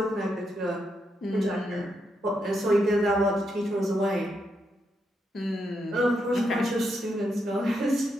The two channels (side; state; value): both; normal; correlation 0.81